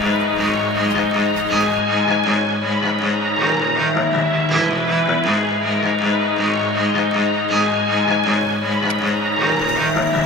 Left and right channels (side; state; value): both; normal; correlation 0.51